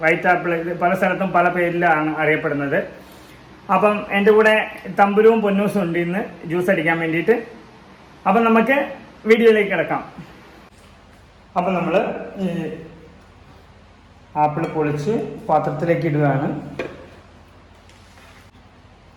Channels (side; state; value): both; identical; correlation 1.00